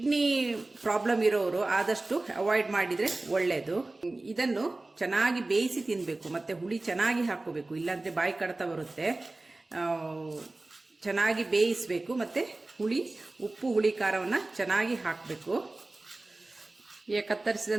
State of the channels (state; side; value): quieter; left; 3.0 dB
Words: ಪ್ರಾಬ್ಲಮ್ ಇರೋರು ಆದಷ್ಟು ಅವಾಯ್ಡ್ ಮಾಡಿದರೆ ಒಳ್ಳೆಯದು. ಇದನ್ನು ಚೆನ್ನಾಗಿ ಬೇಯಿಸಿ ತಿನ್ನಬೇಕು, ಮತ್ತು ಹುಳಿ ಚೆನ್ನಾಗಿ ಹಾಕ್ಕೋಬೇಕು, ಇಲ್ಲಾಂದರೆ ಬಾಯಿ ಕಡ್ತ ಬರುತ್ತೆ. ಚೆನ್ನಾಗಿ ಬೇಯಿಸಬೇಕು, ಮತ್ತು ಉಪ್ಪು ಹುಳಿ ಖಾರವನ್ನು ಚೆನ್ನಾಗಿ ಹಾಕಬೇಕು. ಈಗ